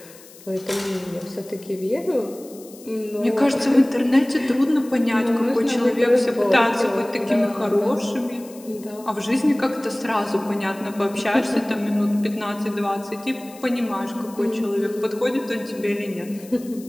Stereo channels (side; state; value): left; noise; hiss, 21 dB below the sound